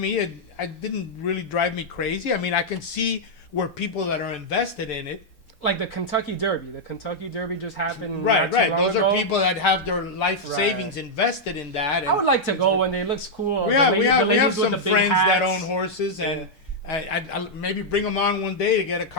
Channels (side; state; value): right; late; 5.4 ms